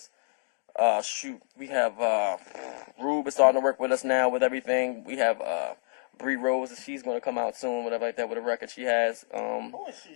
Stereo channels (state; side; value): silent; right; digital silence